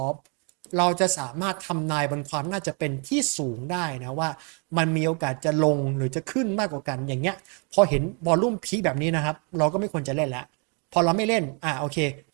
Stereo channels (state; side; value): quieter; left; 35.8 dB